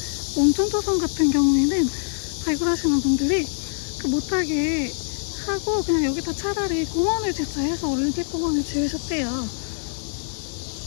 몽촌토성 같은 경우에는 발굴하시는 분들이 못하게 하고 그냥 여기다 차라리 공원을 짓자 해서 올림픽공원을 지으셨대요.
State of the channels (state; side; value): silent; right; digital silence